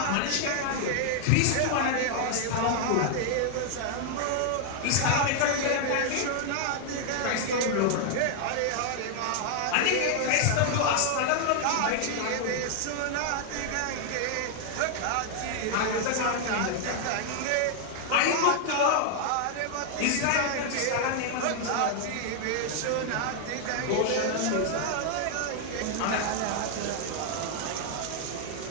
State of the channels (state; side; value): different; both; correlation 0.00